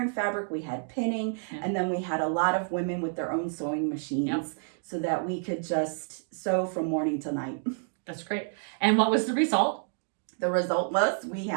fabric, we had pinning, and then we had a lot of women with their own sewing machines so that we could just sew from morning to night. That's great. And what was the result? The result was we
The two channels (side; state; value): left; silent; 58 dB below the other